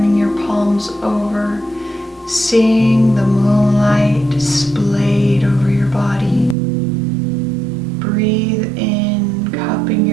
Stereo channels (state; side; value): drops out; left; at 6.6 s